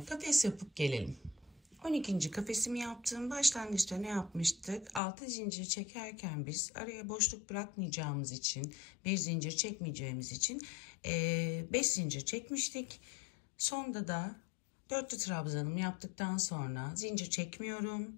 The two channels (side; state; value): right; drops out; at 5.0 s